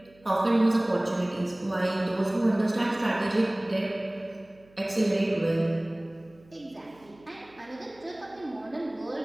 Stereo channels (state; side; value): noise; right; hum, 28 dB below the sound